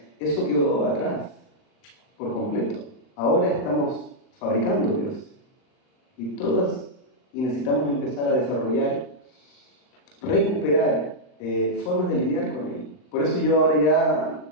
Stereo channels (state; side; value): late; right; 39 ms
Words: Eso quedó atrás, por completo. Ahora estamos fabricando dioses. Y necesitamos empezar a desarrollar, recuperar formas de lidiar con ello. Por eso yo ahora ya